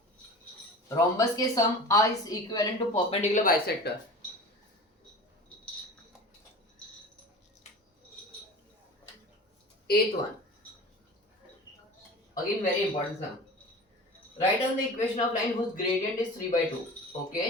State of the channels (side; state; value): both; normal; correlation 0.36